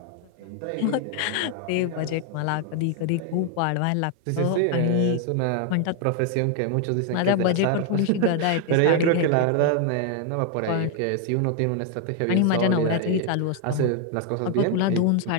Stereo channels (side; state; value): both; different; correlation 0.00